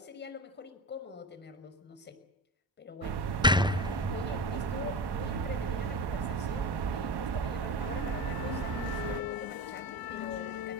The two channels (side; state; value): both; normal; correlation 0.27